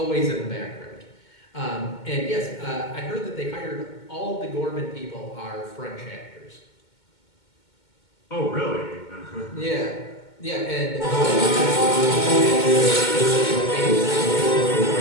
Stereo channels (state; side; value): late; right; 2.2 ms